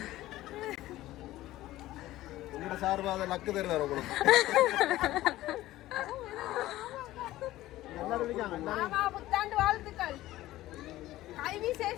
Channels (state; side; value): quieter; right; 15.9 dB